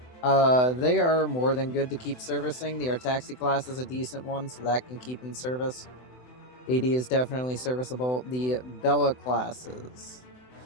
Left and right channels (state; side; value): late; right; 24 ms